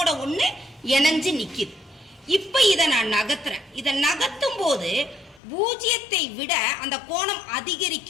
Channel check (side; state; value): right; drops out; at 5.4 s